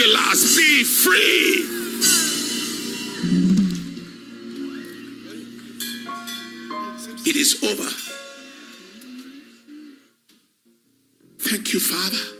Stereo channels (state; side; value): identical; both; correlation 1.00